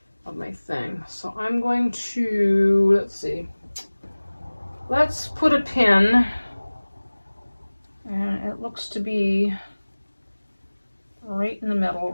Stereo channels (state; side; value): inverted; both; correlation -1.00